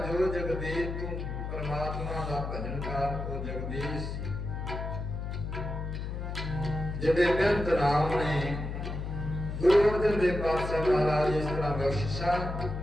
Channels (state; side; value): noise; left; hum, 5 dB below the sound